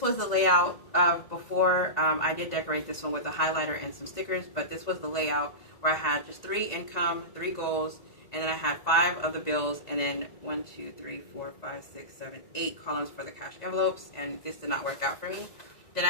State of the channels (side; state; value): right; late; 1.9 ms